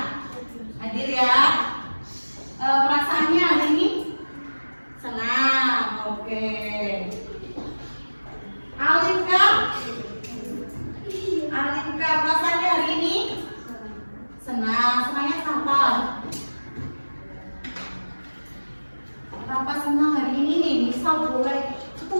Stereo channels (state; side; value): inverted; both; correlation -1.00